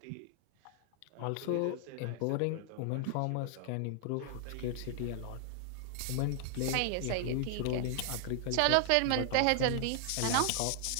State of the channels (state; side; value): different; both; correlation 0.00